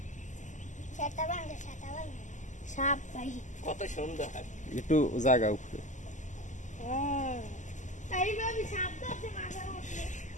সাপ ভাই কত সুন্দর। একটু জায়গা উপরে তাই ভাবি সাপ তো আছে মাছের মধ্যে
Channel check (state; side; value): late; right; 0.36 ms